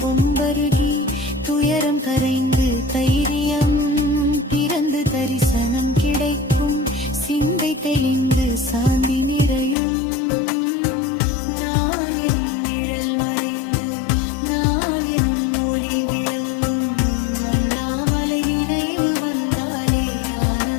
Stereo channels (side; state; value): right; drops out; at 9.8 s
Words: பொம்பருகி துயரம் கரைந்து தைரியம் பிறந்து தரிசனம் கிடைக்கும் சிந்தை தெளிந்து சாந்தி நிறையும் நான் எனும் நிழல் மறைந்து நான் எனும் ஒளி விளங்கும் அண்ணாமலை நினைவு வந்தாலே